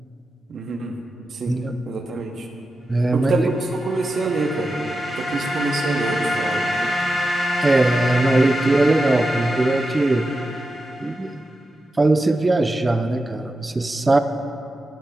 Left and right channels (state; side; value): normal; both; correlation 0.90